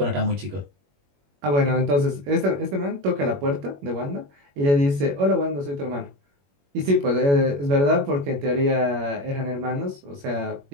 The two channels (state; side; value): late; left; 21 ms